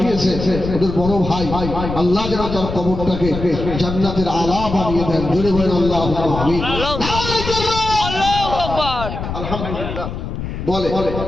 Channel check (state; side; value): noise; left; rumble, 6 dB below the sound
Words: দিয়েছে, ওদের বড় ভাই। আল্লাহ যেন তার কবরটাকে জান্নাতের আলা বানিয়ে দেন। জোরে বলেন আল্লাহু আমিন। আল্লাহু আকবার। আলহামদুলিল্লাহ। বলে